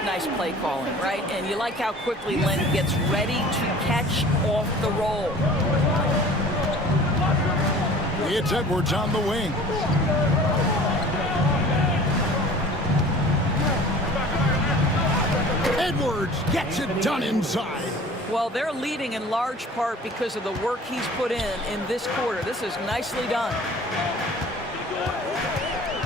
nice play calling, right? And you like how quickly Len gets ready to catch off the roll. It's Edwards on the wing. Edwards gets it done inside. Well, they're leading in large part because of the work he's put in this quarter. This is nicely done.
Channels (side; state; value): both; normal; correlation 0.45